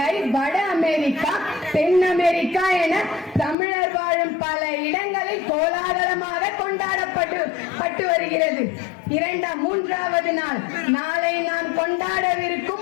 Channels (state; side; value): drops out; right; at 3.6 s